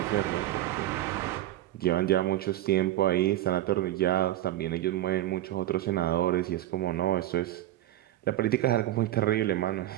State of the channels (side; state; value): left; quieter; 14.2 dB